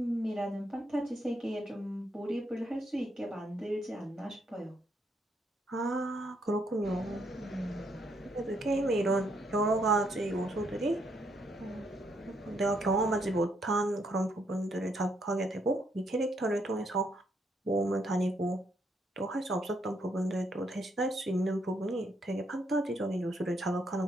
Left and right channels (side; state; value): both; normal; correlation 0.74